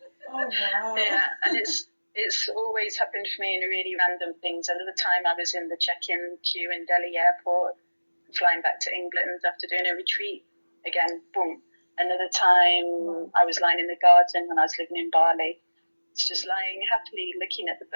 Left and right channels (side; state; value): both; inverted; correlation -1.00